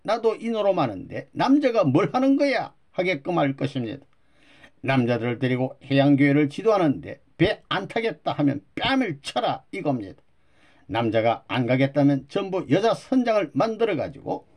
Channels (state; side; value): identical; both; correlation 1.00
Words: 나도 이노로 하는데 남자가 뭘 하는 거야 하게끔 할 것입니다. 남자들을 데리고 해양교회를 지도하는데 배 안 타겠다 하면 뺨을 쳐라 이겁니다. 남자가 안 가겠다면 전부 여자 선장을 만들어 가지고